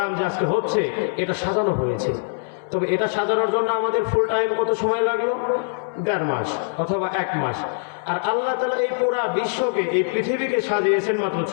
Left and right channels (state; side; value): silent; right; 64 dB below the other